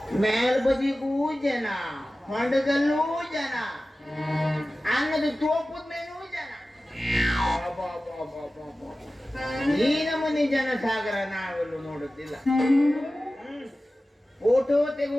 ಮೇಲ್ಬದಿಗೂ ಜನ, ಹೊಂಡದಲ್ಲೂ ಜನ, ಅನ್ನದ ತೋಪದ ಮೇಲೂ ಜನ. ಈ ನಮೂನಿ ಜನ ಸಾಗರ ನಾವೆಲ್ಲೂ ನೋಡುತ್ತಿಲ್ಲ. ಫೋಟೋ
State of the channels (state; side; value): normal; both; correlation 0.96